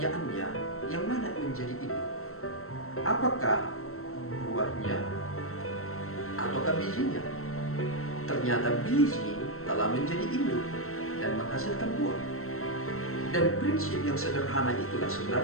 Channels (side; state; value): right; late; 0.63 ms